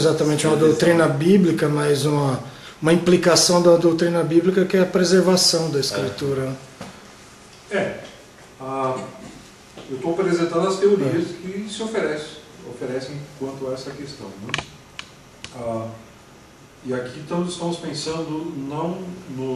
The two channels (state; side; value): identical; both; correlation 1.00